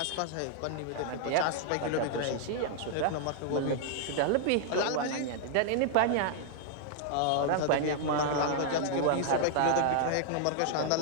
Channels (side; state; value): both; different; correlation -0.01